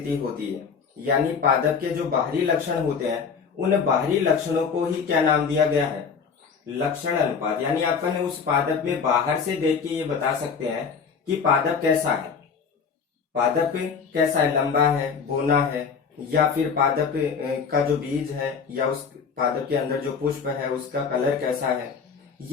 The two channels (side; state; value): right; quieter; 5.9 dB